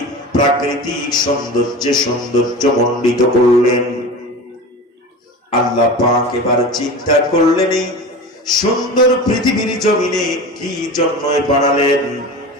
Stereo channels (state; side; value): normal; both; correlation 0.32